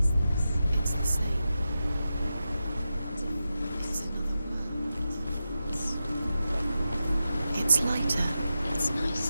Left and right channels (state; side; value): inverted; both; correlation -0.91